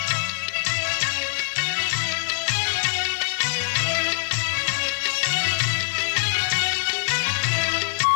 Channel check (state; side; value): silent; right; digital silence